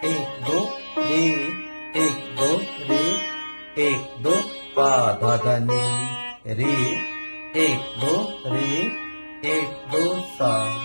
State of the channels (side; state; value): both; inverted; correlation -1.00